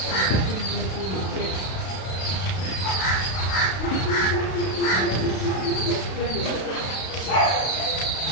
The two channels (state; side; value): late; right; 32 ms